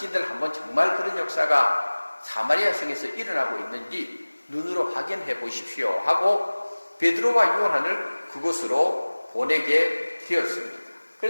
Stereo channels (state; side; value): inverted; both; correlation -1.00